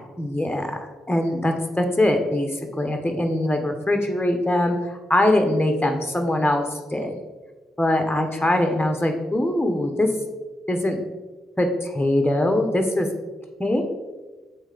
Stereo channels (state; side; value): normal; both; correlation 0.88